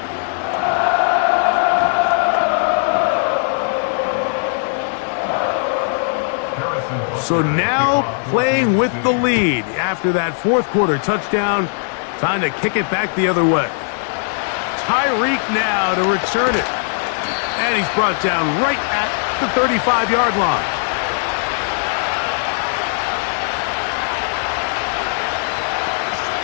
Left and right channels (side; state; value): right; silent; 62 dB below the other